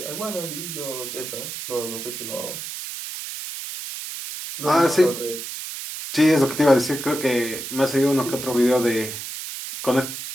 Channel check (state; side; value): noise; right; hiss, 8 dB below the sound